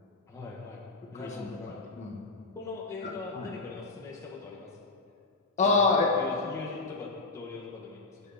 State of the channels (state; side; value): quieter; right; 3.4 dB